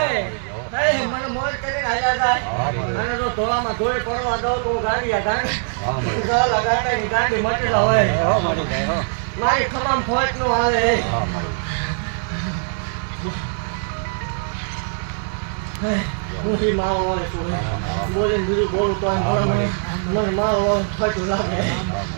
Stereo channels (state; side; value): silent; left; digital silence